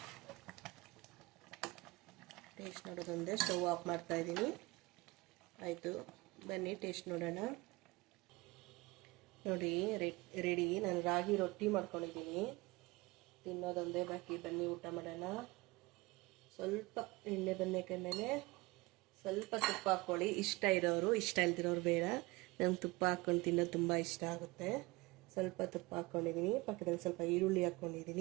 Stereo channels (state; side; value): quieter; left; 22.5 dB